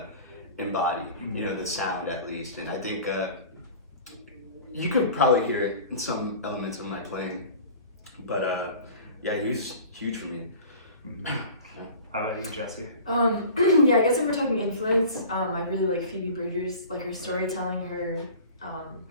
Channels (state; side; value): inverted; both; correlation -0.41